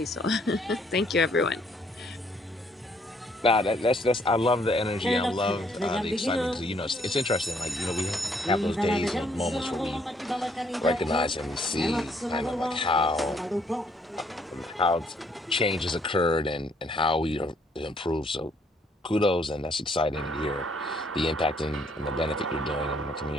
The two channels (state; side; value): normal; both; correlation 0.67